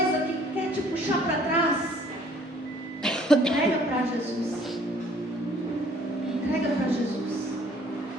que quer te puxar para trás, entrega para Jesus. Entrega para Jesus.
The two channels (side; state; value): both; normal; correlation 0.58